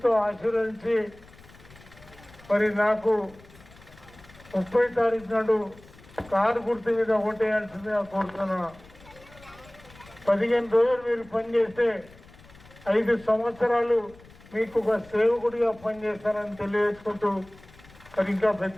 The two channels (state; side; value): noise; left; rumble, 23 dB below the sound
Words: ఆశీర్వదించి మరి నాకు 30 తారీఖు నాడు కారు గుర్తు మీద ఓటేయాల్సిందిగా కోరుతున్నా. 15 రోజులు మీరు పనిచేస్తే 5 సంవత్సరాలు మీకు ఒక సేవకుడిగా పనిచేస్తానని తెలియజేసుకుంటూ, మరి ఇంకా